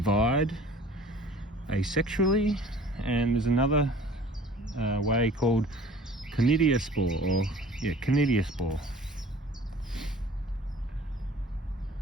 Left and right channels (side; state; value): both; normal; correlation 0.47